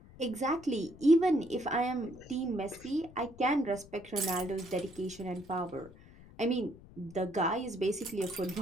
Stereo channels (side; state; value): left; noise; rumble, 20 dB below the sound